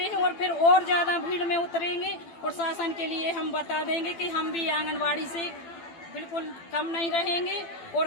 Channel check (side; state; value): right; late; 12 ms